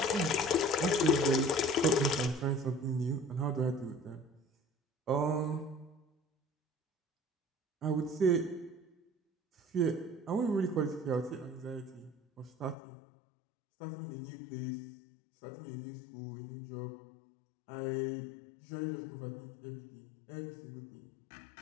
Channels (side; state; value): right; drops out; at 12.8 s